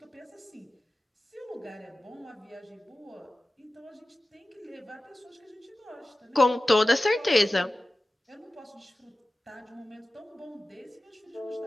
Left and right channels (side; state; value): both; normal; correlation 0.95